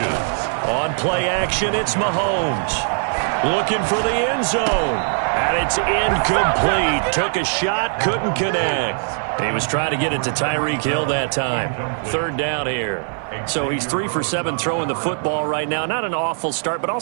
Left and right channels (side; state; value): left; silent; 58 dB below the other